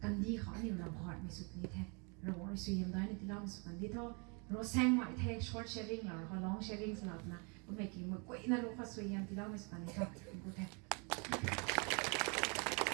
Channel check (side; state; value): left; quieter; 33.8 dB